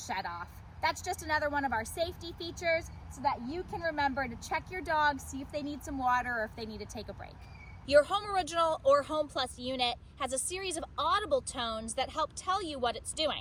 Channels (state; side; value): identical; both; correlation 1.00